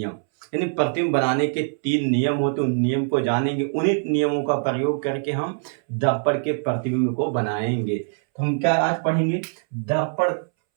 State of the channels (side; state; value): left; silent; 63 dB below the other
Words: यानी प्रतिबिंब बनाने के 3 नियम होते हैं, उन नियम को जानेंगे। उन्हीं नियमों का प्रयोग करके हम दर्पण के प्रतिबिंब को बनाएंगे। तो हम क्या आज पढ़ेंगे? दर्पण